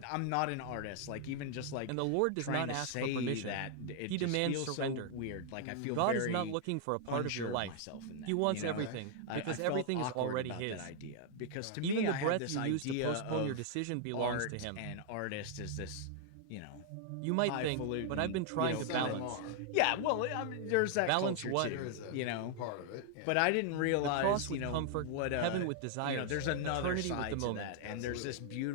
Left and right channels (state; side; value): different; both; correlation 0.00